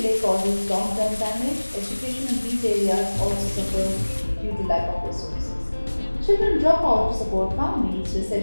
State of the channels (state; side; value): inverted; both; correlation -1.00